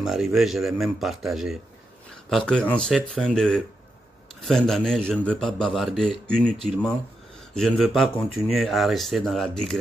je l'ai même partagé. Parce que en cette fin d'année, je ne veux pas bavarder inutilement. Je ne veux pas continuer à rester dans la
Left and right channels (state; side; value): normal; both; correlation 0.85